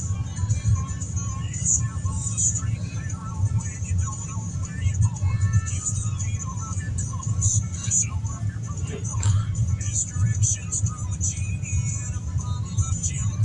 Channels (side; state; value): both; identical; correlation 1.00